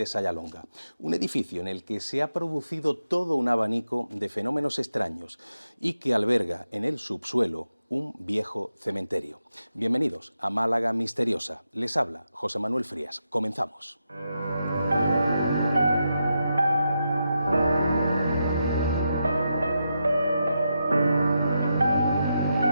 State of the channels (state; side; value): inverted; both; correlation -0.86